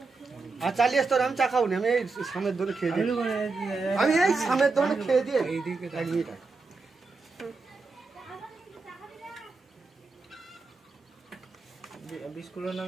আর চালিয়ে তোর আমি চা খাবো না, আমি এই সামনের দোকানে খেয়ে দিই, আমি এই সামনের দোকানে খেয়ে দিয়ে এইদিকে এক মিনিট বিস্কুটের নাম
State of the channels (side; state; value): left; quieter; 4.0 dB